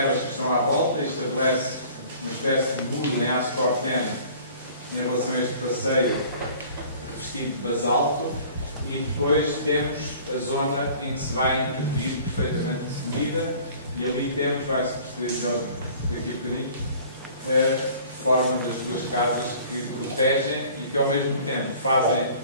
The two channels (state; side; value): inverted; both; correlation -0.49